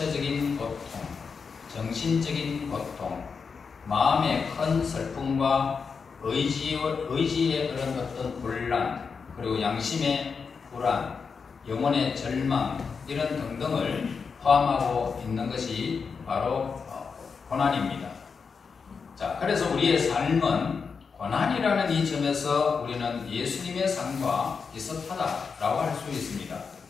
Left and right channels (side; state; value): right; quieter; 5.5 dB